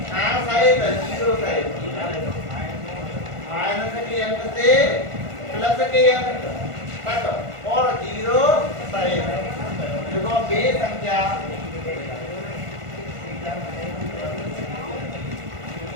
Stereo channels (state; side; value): late; left; 1.5 ms